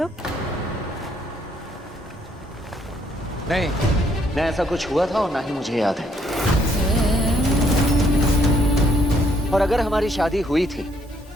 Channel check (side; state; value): both; normal; correlation 0.69